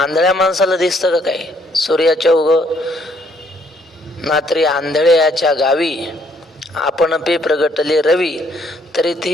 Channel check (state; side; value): normal; both; correlation 0.67